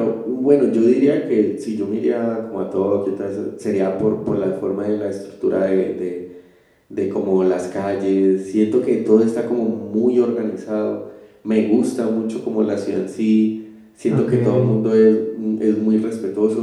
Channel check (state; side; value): identical; both; correlation 1.00